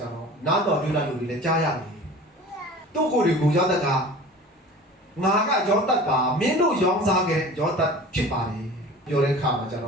ျတော့နားတော်ပြုလာလူတွေလည်းကြားရတယ်သူ့ကိုယ်တွေကိုယောသက်ကငါကယောသက်ပါမင်းတို့ရောင်းစားခဲ့ယောသက်ဖြစ်ပါလေပြောတဲ့ခါမှာကျတေ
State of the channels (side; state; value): both; normal; correlation 0.40